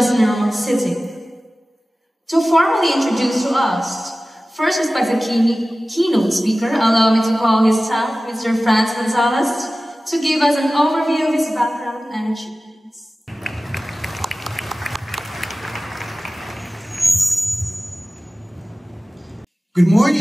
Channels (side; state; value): both; normal; correlation 0.96